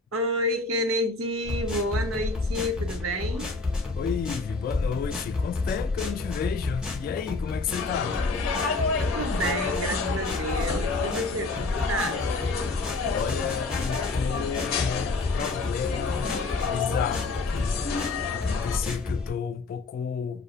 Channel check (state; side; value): quieter; right; 3.5 dB